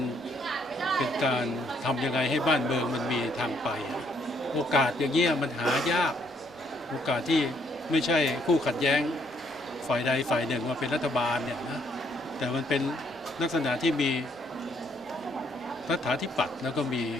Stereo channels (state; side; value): normal; both; correlation 0.69